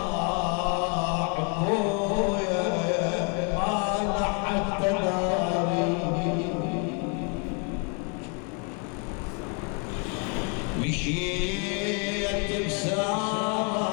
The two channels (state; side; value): quieter; right; 35.8 dB